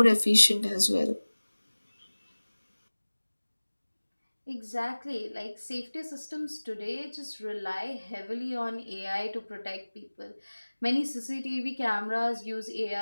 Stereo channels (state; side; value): inverted; both; correlation -1.00